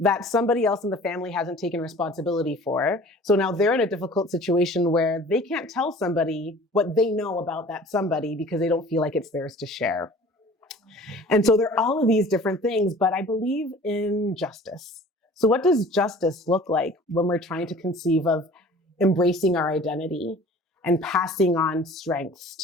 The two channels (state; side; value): normal; both; correlation 0.46